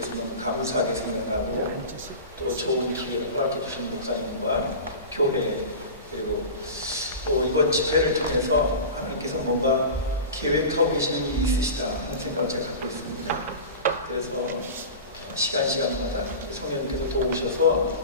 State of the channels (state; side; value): inverted; both; correlation -0.31